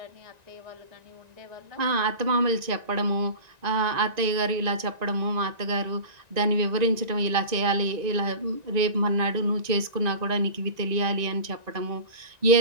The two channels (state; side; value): late; left; 1.9 ms